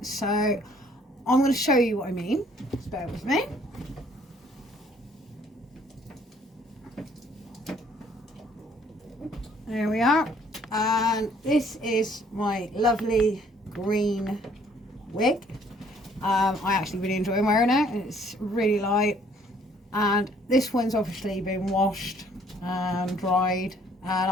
So I'm going to show you what I mean. Just bear with me. There we are, and this is my lovely green wig. I actually really enjoy wearing it. It's really light, and this one's obviously been washed and dried, and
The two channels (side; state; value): both; normal; correlation 0.61